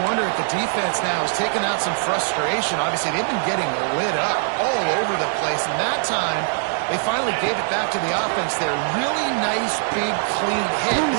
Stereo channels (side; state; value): left; silent; 64 dB below the other